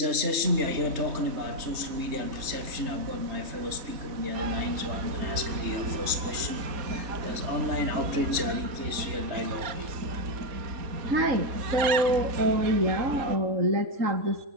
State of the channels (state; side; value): late; left; 3.3 ms